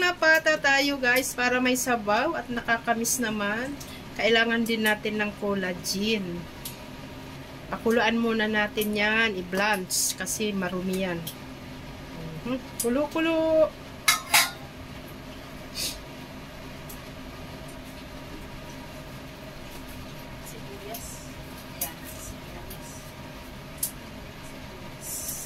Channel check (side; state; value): both; identical; correlation 1.00